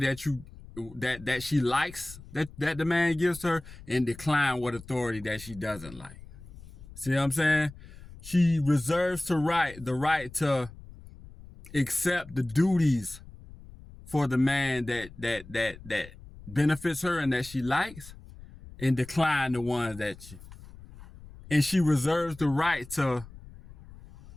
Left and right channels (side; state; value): left; noise; rumble, 18 dB below the sound